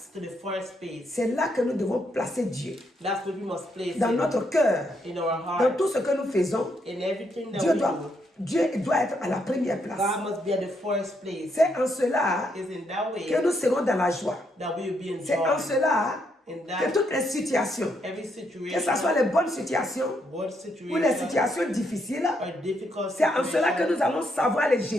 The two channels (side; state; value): both; normal; correlation 0.76